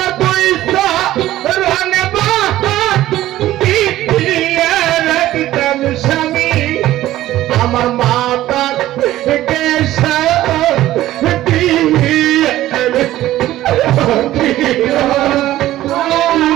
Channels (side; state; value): left; quieter; 14.7 dB